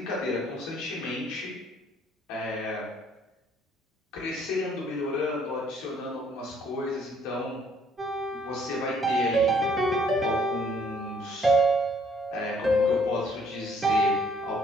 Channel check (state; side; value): normal; both; correlation 0.63